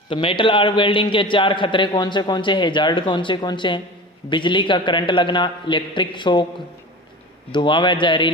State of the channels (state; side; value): normal; both; correlation 0.33